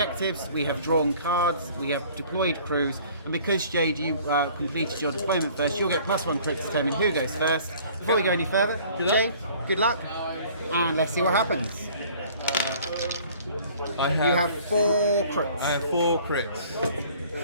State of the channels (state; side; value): inverted; both; correlation -0.52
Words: we have drawn cards, we have deployed crews, and because Jade, you completed your deployment first, you'll get +1 crit to determine who goes first. Before we go any further, Jade, good luck, and let's see what happens. You have 4 crits. I have 4